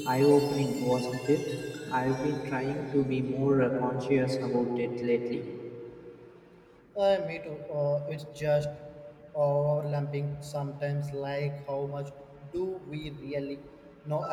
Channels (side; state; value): both; identical; correlation 1.00